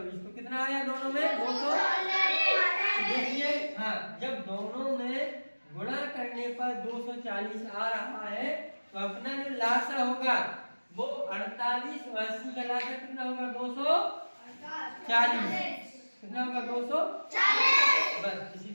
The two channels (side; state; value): both; inverted; correlation -1.00